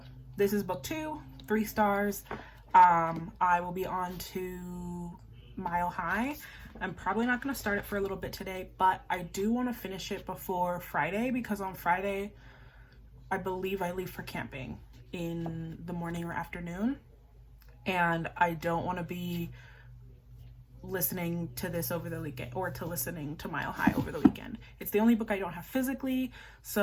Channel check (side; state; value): both; identical; correlation 1.00